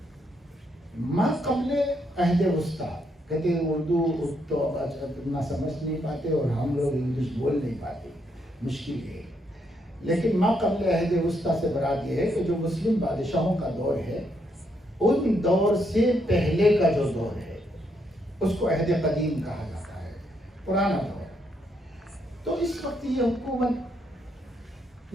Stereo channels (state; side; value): normal; both; correlation 0.76